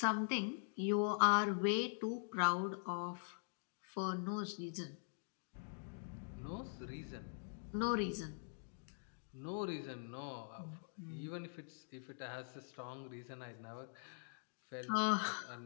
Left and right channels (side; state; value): right; silent; digital silence